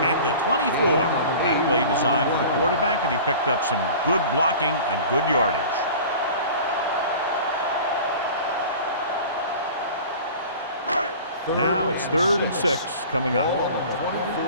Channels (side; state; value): both; inverted; correlation -0.40